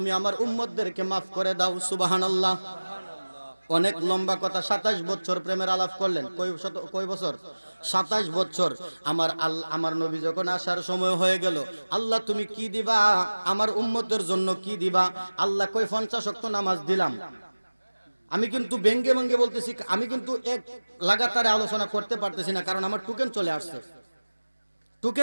আমার উম্মতদেরকে মাফ করে দাও। সুবহানাল্লাহ। অনেক লম্বা কথা, 27 বছর প্রেমের আলাপ করলেন। কয় বছর? 27 বছর। আমার নবী যখন আসার সময় হয়ে গেল, আল্লাহ তুমি কি দিবা আমার উম্মতের জন্য, কি দিবা? আল্লাহ কই 50 ওয়াক্ত নামাজ দিলাম। আমি কিন্তু ব্যঙ্গে ব্যঙ্গে বলতেছি, আমি কিন্তু এক লাগাতারে আলোচনা করতে পারতেছি না, কারণ আমার টোকেন চলে আসছে।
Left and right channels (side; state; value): both; inverted; correlation -1.00